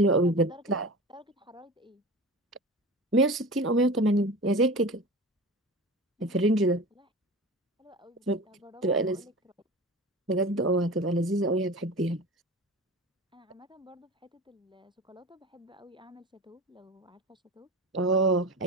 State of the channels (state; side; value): normal; both; correlation 0.33